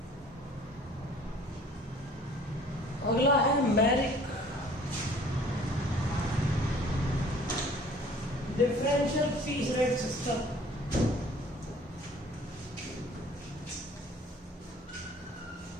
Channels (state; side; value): normal; both; correlation 0.52